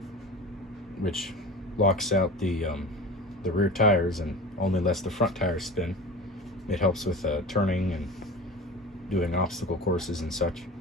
which locks out the rear tires and only lets the front tires spin, it helps with turning and doing obstacle courses and such.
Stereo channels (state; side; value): normal; both; correlation 0.33